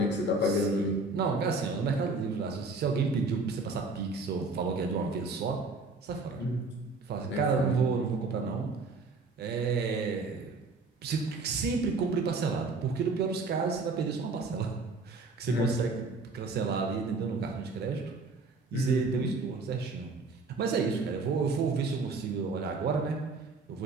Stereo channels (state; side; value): quieter; left; 3.6 dB